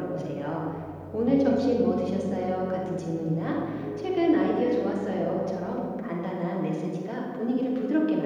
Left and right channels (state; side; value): identical; both; correlation 1.00